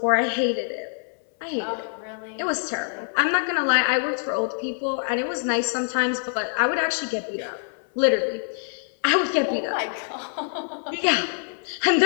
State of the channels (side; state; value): right; silent; 62 dB below the other